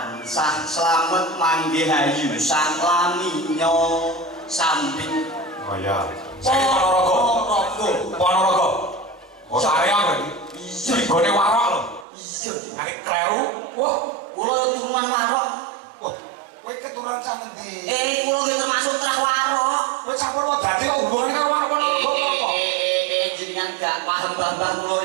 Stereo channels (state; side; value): drops out; left; at 12.1 s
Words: slamet manggih hayu saklaminyo sambit. Oh ya. Saya Ponorogo. Ponorogo. Oh saya berarti. Iya. Gone warok lho. Iya. Nek kleru, wah, Kula turunan warok. wah, kowe keturunan sak endi? Kula nggih termasuk trah warok. Kowe campur wae dadi kok hubungane karo warok Ponorogo apa? Jenengan gak paham Mbah kula